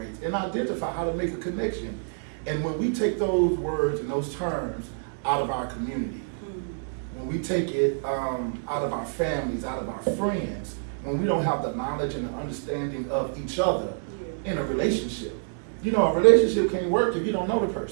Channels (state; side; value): silent; left; digital silence